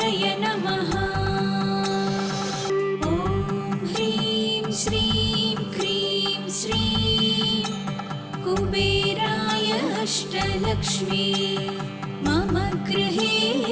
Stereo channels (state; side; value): identical; both; correlation 1.00